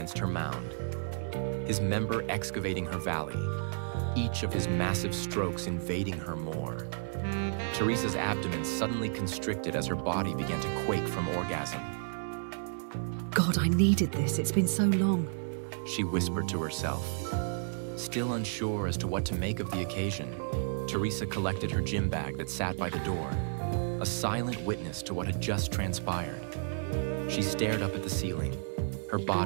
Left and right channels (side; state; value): left; silent; 56 dB below the other